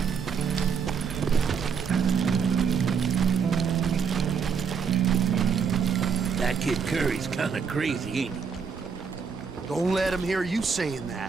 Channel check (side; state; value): left; quieter; 6.2 dB